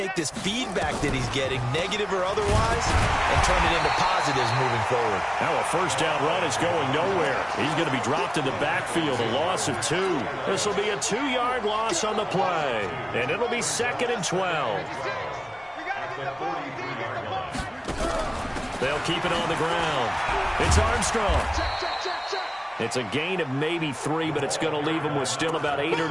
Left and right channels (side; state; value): both; identical; correlation 1.00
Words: this feedback that he's getting, negative or otherwise, and turn it into positives moving forward. Now a first down run is going nowhere. He's going to be dropped in the backfield, a loss of 2. This will be a 2-yard loss on the play, and it'll be 2nd and 12. They'll keep it on the ground. It's Armstrong. It's a gain of maybe 3, but it's going to leave them with still about 8 or